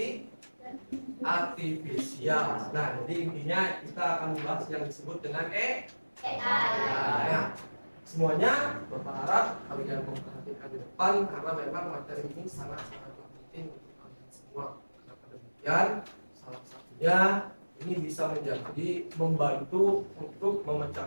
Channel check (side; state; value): both; inverted; correlation -1.00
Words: artifisial. Nah, jadi intinya kita akan membahas yang disebut dengan AI. Nah, semuanya berharap kalian memperhatikan di depan karena memang materi ini sangat-sangat penting untuk kalian semua. Kenapa demikian? Salah satunya ini bisa menjadi membantu untuk